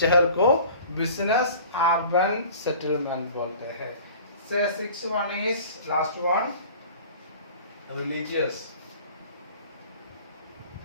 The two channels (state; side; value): inverted; both; correlation -0.44